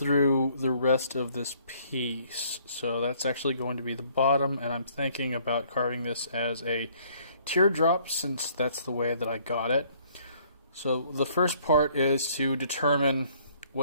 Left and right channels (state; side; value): inverted; both; correlation -0.62